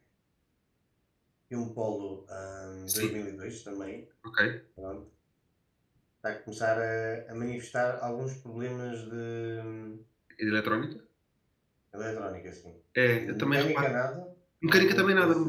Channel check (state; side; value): identical; both; correlation 1.00